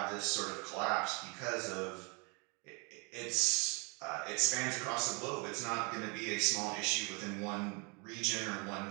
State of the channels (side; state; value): left; quieter; 32.0 dB